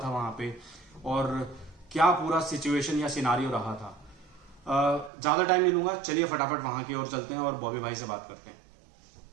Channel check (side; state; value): left; drops out; at 5.1 s